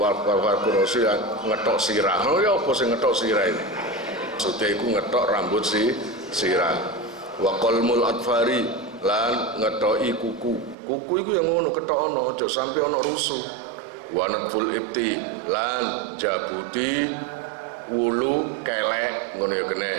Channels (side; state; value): left; drops out; at 10.8 s